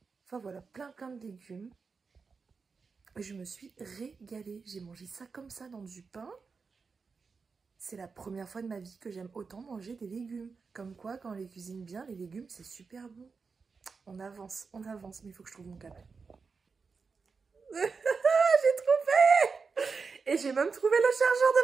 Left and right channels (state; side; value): quieter; left; 4.9 dB